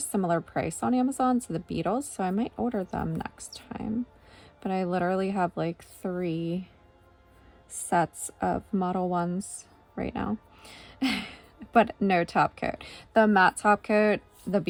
similar price on Amazon to the Beetles, so I might order them next time. But I literally have like 3 sets of Model 1s right now. But no top coat. The matte top coat, the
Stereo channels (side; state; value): both; identical; correlation 1.00